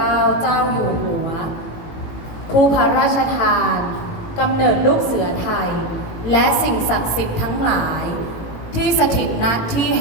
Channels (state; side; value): late; right; 18 ms